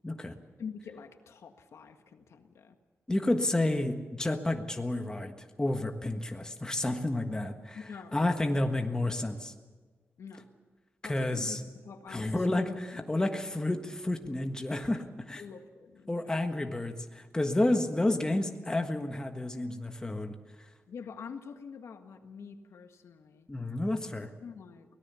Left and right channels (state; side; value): normal; both; correlation 0.92